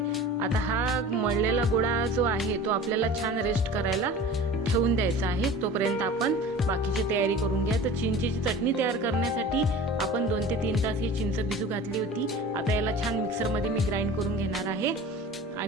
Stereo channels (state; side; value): normal; both; correlation 0.39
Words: आता हा मळलेला गोळा जो आहे तो आपल्याला छान रेस्ट करायला ठेवून द्यायचा आहे। तोपर्यंत आपण बाकीची तयारी करून घ्या। तर चिंचेची चटणी तयार करण्यासाठी आपण 2 ते 3 तास ही चिंच भिजू घातली होती। आता याला छान मिक्सरमध्ये मी ग्राइंड करून घेणार आहे